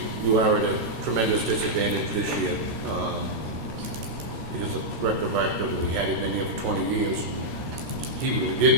you are at a tremendous disadvantage this year because the director of activity, we had it been here for 20 years. He really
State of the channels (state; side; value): late; left; 13 ms